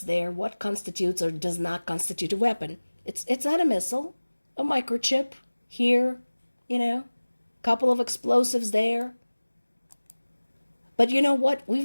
there, what constitutes or does not constitute a weapon, it's not a missile, a microchip here, couple of explosives there. But you know what?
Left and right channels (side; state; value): both; inverted; correlation -1.00